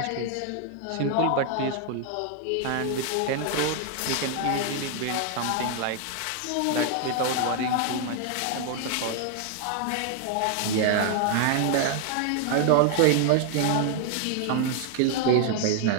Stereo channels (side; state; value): both; different; correlation 0.00